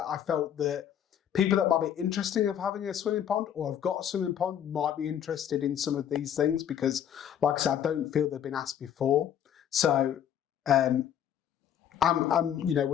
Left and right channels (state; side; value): quieter; right; 9.6 dB